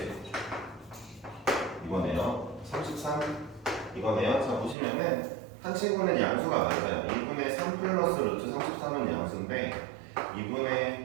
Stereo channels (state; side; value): drops out; left; at 4.8 s